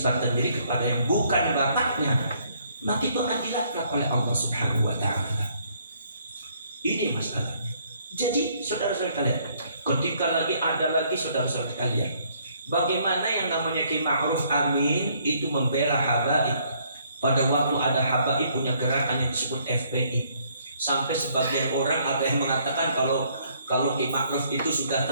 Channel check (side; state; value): both; inverted; correlation -0.66